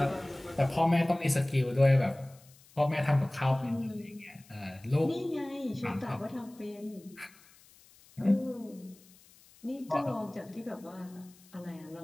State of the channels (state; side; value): noise; left; hiss, 26 dB below the sound